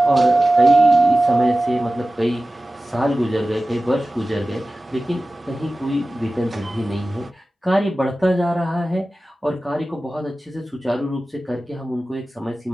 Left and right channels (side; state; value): both; normal; correlation 0.96